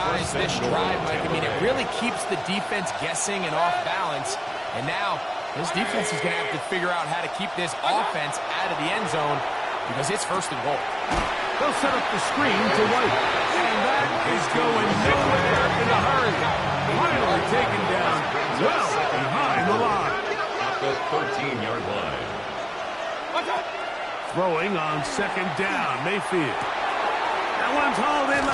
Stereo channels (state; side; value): identical; both; correlation 1.00